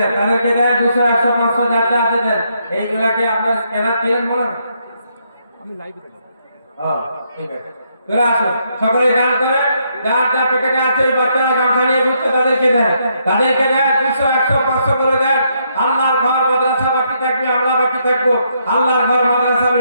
তাদেরকে দেন 200, 100, 500 যার যা আছে দেন। এইগুলাকে আপনার স্ক্যানার দিলেন বলেন, আমি লাইভে দেব। ঠিক আছে, চলে আসুন, সকলে গান করে, যার যা প্যাকেটে আছে ওই বাচ্চারা গামছা নিয়ে ঘুরছে, তাদেরকে দেন, তাদেরকে দেন 200, 100, 500 করে দেন। আল্লাহর ঘর মাদ্রাসা বাকি থাকবে, আমরা বাকি থাকবো। আল্লাহর ঘর মাদ্রাসা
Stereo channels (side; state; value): both; inverted; correlation -0.75